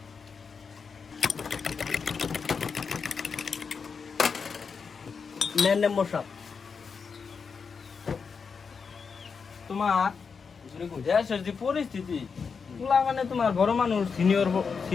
নেন মেম্বার সাহেব। তোমার দেশের যে পরিস্থিতি, তুলা মানে তোমার বড় মানুষ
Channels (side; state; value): right; quieter; 5.6 dB